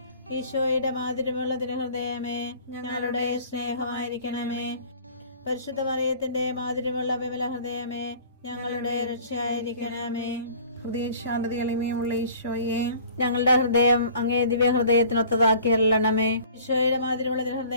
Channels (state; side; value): inverted; both; correlation -0.48